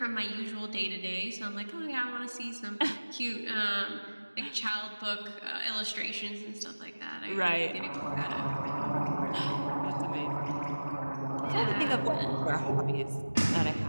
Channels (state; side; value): inverted; both; correlation -1.00